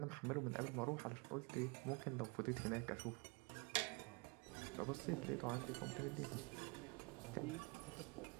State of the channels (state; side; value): quieter; left; 29.7 dB